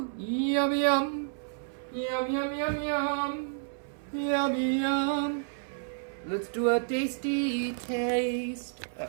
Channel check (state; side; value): silent; left; 57 dB below the other